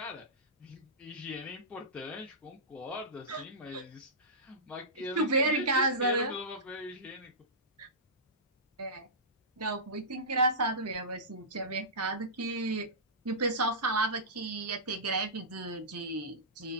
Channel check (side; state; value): both; normal; correlation -0.18